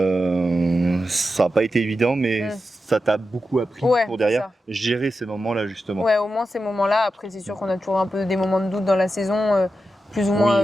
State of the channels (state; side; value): normal; both; correlation 0.90